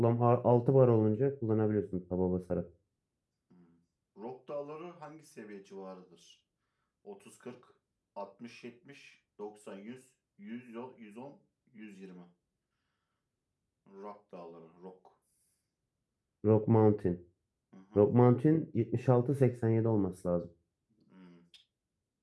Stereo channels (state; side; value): identical; both; correlation 1.00